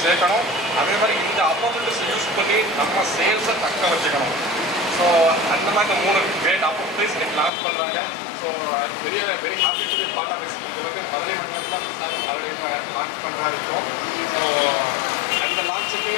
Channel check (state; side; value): drops out; right; at 7.5 s